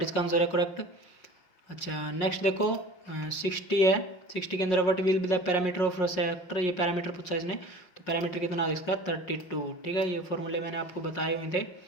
इसका आंसर है करेक्ट। अच्छा नेक्स्ट देखो 60 है, 60 के अंदर what will be the parameter of sector, ये पैरामीटर पूछा इसने। तो पैरामीटर कितना है इसका 32, ठीक है। ये फॉर्मूले मैंने आपको बताए हुए थे,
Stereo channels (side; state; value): right; late; 5.5 ms